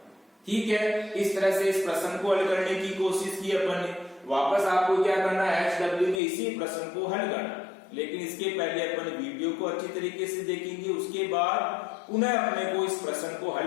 ठीक है। इस तरह से इस प्रश्न को हल करने की कोशिश की अपन ने। वापस आपको क्या करना है HW में इसी प्रश्न को हल करना, लेकिन इसके पहले अपन वीडियो को अच्छी तरीके से देखेंगे, उसके बाद पुनः अपने को इस प्रश्न को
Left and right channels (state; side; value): drops out; right; at 6.2 s